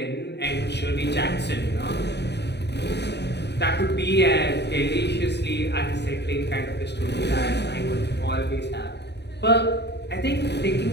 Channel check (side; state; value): right; late; 0.49 ms